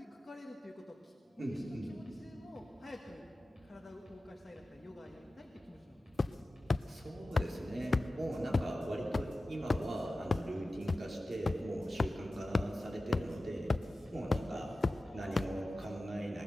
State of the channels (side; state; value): both; normal; correlation 0.95